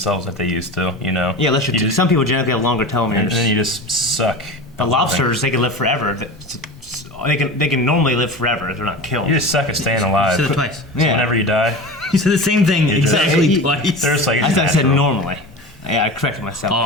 like they used to. You know. Yeah, unless some people genetically have longer telomeres. And then you just suck. The lobsters, they can live forever. They can normally live forever if they're not killed. You just suck at staying alive. You said it twice. So whenever you die, You said the same thing exactly twice. there's like I it's thought I said natural. normally. Yeah, I corrected myself. Oh,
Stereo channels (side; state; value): both; normal; correlation 0.30